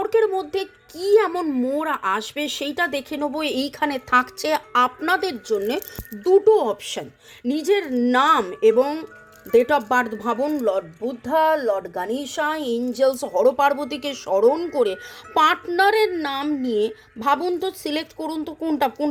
মধ্যে কি এমন মোড় আসবে সেইটা দেখে নেবো। এইখানে থাকছে আপনাদের জন্য দুটো অপশান। নিজের নাম এবং ডেট অফ বার্থ ভাবুন, lord Buddha, lord Ganesha, angels, হরপার্বতীকে স্মরণ করে পার্টনারের নাম নিয়ে ভাবুন তো, সিলেক্ট করুন তো কোনটা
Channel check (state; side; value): identical; both; correlation 1.00